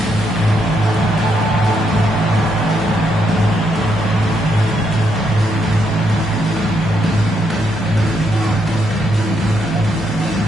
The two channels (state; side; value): normal; both; correlation 0.77